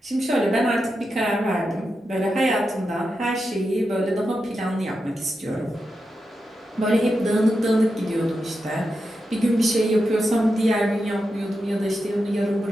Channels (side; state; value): both; normal; correlation 0.88